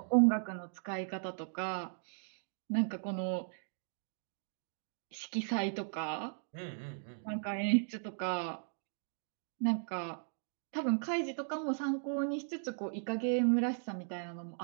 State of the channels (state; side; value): silent; left; digital silence